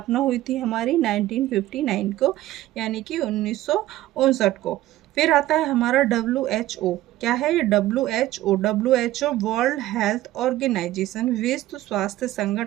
हुई थी हमारी 1959 को, यानी कि 1959 को। फिर आता है हमारा WHO। क्या है ये? WHO वर्ल्ड हेल्थ ऑर्गेनाइजेशन, विश्व स्वास्थ्य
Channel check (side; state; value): left; quieter; 15.4 dB